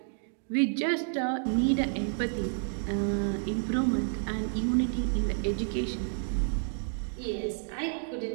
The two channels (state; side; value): silent; left; digital silence